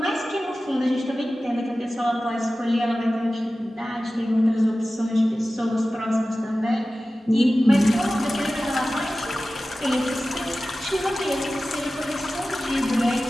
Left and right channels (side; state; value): both; normal; correlation 0.95